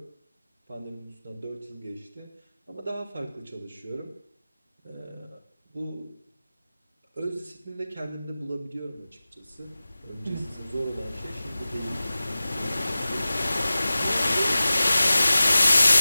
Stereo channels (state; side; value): inverted; both; correlation -0.96